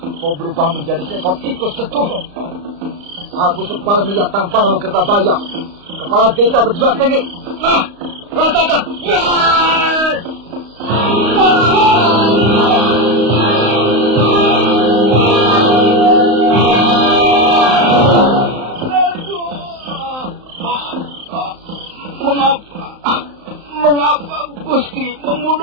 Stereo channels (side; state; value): left; late; 35 ms